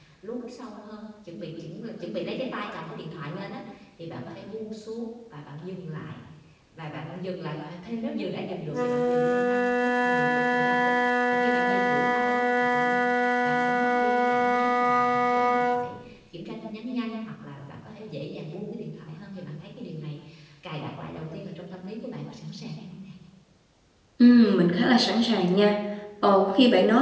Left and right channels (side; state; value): both; identical; correlation 1.00